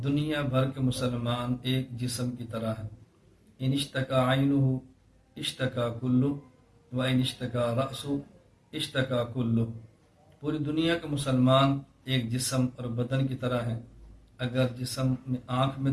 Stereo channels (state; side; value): identical; both; correlation 1.00